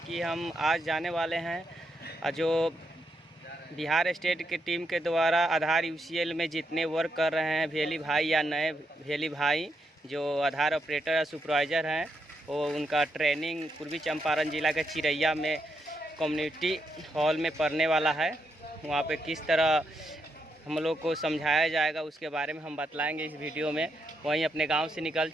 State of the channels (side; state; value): both; normal; correlation 0.81